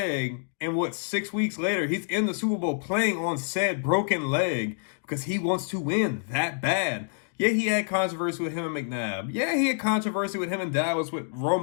and 6 weeks later, he's in the Super Bowl playing on said broken leg because he wants to win that bad. Yeah, he had controversy with him and McNabb. Yeah, he had controversy with him and Dallas, with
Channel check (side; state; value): right; silent; 60 dB below the other